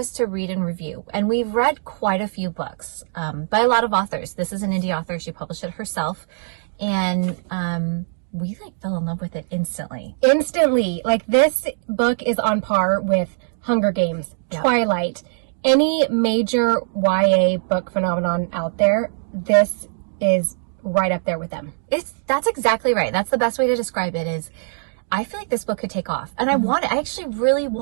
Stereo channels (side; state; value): left; silent; digital silence